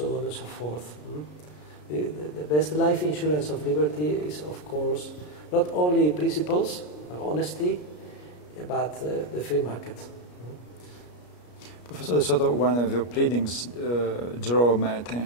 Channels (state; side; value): late; right; 33 ms